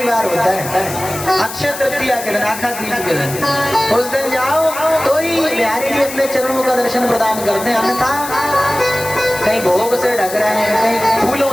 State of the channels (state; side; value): noise; left; hiss, 10 dB below the sound